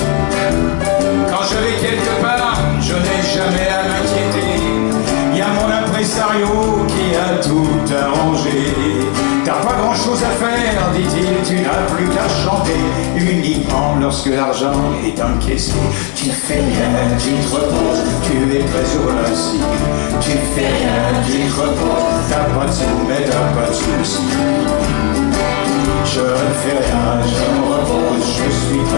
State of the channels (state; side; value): quieter; right; 38.2 dB